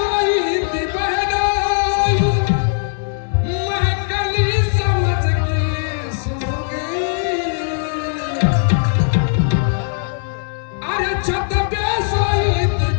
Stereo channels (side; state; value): right; silent; digital silence